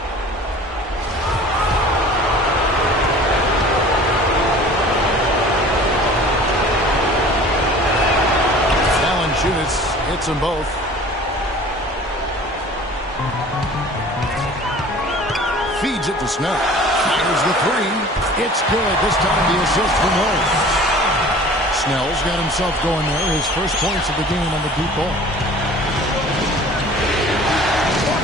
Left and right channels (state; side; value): normal; both; correlation 0.45